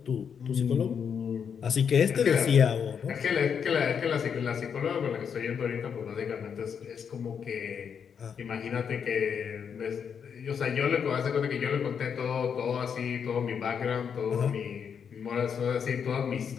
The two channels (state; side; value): quieter; right; 7.2 dB